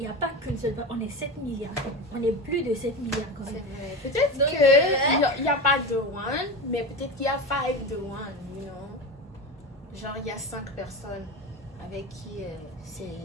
n'y a pas qu'une seule personne, on est 7 milliards. On est plus de 7 milliards quand C'est même. vrai. Peut-être Donc, qu'il n'y a pas de one, mais peut-être qu'il y a 5 de one, you know? Genre, il y a 5 personnes avec qui c'est...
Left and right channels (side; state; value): both; normal; correlation 0.23